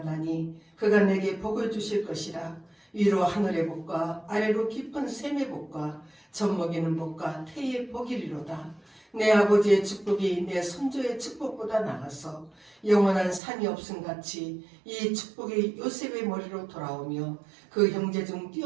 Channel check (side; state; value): left; drops out; at 13.4 s